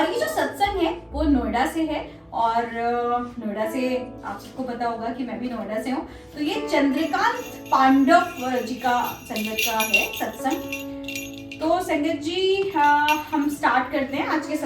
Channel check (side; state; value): both; identical; correlation 1.00